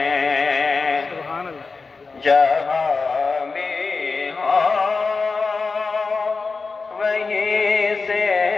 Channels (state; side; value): quieter; right; 4.3 dB